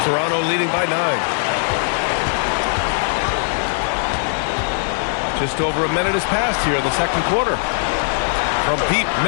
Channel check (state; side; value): silent; right; digital silence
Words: Toronto leading by 9. Just over a minute has passed here in the second quarter. From deep,